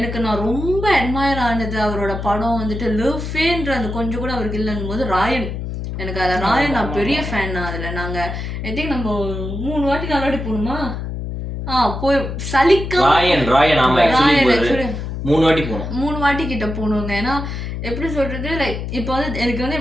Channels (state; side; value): noise; left; hum, 5 dB below the sound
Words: நான் ரொம்ப அட்மயர் ஆனது அவரோட படம் வந்துட்டு லவ்ஃபேன்ற அந்த கொஞ்சம் கூட அவருக்கு இல்லைன்னும் போது ராயன். எனக்கு அதில் ராயன் நான் பெரிய ஃபேன். அதில் நாங்கள் ஐ திங்க் நம்ம 3 வாட்டி 4 வாட்டி போகணுமா போய் சலிக்காம 3 வாட்டி போனோம். 3 வாட்டி கிட்ட போகணுங்க. ஏன்னா எப்படி சொல்றது லைக் இப்போ வந்து எனக்கு வந்து